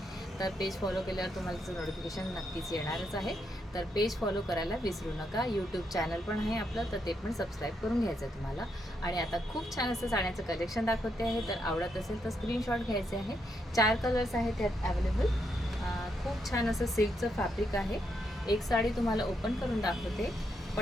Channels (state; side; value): normal; both; correlation 0.79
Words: तर पेज फॉलो केल्यावर तुम्हाला त्याचं नोटिफिकेशन नक्कीच येणारच आहे. तर पेज फॉलो करायला विसरू नका. यूट्यूब चॅनल पण आहे आपलं, तर ते पण सबस्क्राईब करून घ्यायचं आहे तुम्हाला. आणि आता खूप छान असं साड्याचं कलेक्शन दाखवते आहे. तर आवडत असेल तर स्क्रीनशॉट घ्यायचे आहे. 4 कलर्स आहेत त्यात अवेलेबल. खूप छान असं सिल्कचं फॅब्रिक आहे. एक साडी तुम्हाला ओपन करून दाखवते